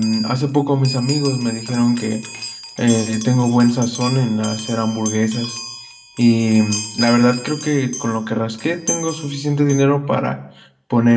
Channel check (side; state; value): both; identical; correlation 1.00